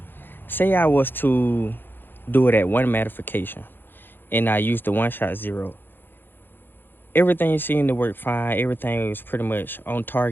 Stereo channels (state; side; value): late; right; 0.098 ms